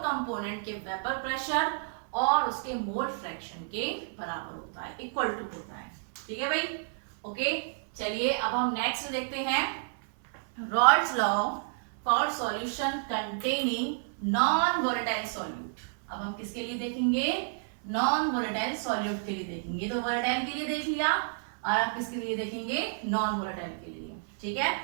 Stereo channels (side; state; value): left; silent; 57 dB below the other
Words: कंपोनेंट के वेपर प्रेशर और उसके मोल फ्रैक्शन के बराबर होता है, इक्वल टू होता है। ठीक है भाई? ओके, चलिए अब हम नेक्स्ट देखते हैं rods law for solution containing non volatile solute. अब हम किसके लिए देखेंगे, नॉन वोलेटाइल सॉल्यूट के लिए देखेंगे। तो वोलेटाइल के लिए देख लिया, और आप किसके लिए देखेंगे, नॉन वोलेटाइल के लिए। ठीक है,